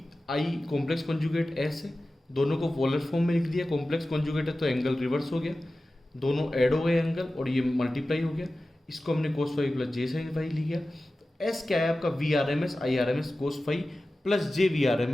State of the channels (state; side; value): normal; both; correlation 0.95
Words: I complex conjugate S है, दोनों को पोलर फॉर्म में लिख दिया, कॉम्प्लेक्स कॉन्जुगेट है तो एंगल रिवर्स हो गया, दोनों ऐड हो गए एंगल और ये मल्टीप्लाई हो गया, इसको हमने कोस 5 प्लस जे साइन 5 लिया। एस क्या है आपका V R M S I R M S cos 5 plus J V R M